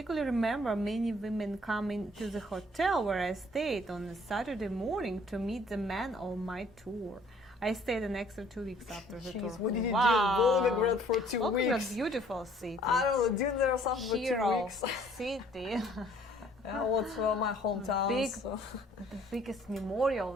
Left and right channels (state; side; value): normal; both; correlation 0.59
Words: remember many women coming to the hotel where I stayed on a Saturday morning to meet the man on my tour. I stayed an extra 2 weeks after the tour. Jeez, what did you Wow. do? Volgograd for 2 Volgograd, weeks. beautiful city. I don't know, did there something for 2 Hero weeks? city. Yeah, what's my hometown? Big, so. the biggest